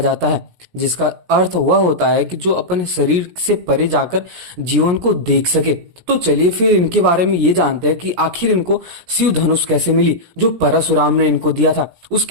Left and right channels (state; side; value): late; left; 17 ms